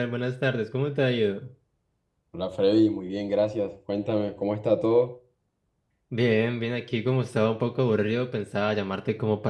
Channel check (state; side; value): identical; both; correlation 1.00